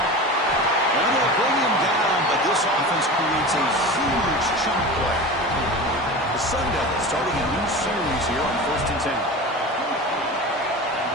they'll bring him down, but this offense creates a huge chunk play. The Sun Devils starting a new series here on 1st and 10.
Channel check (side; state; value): both; normal; correlation 0.31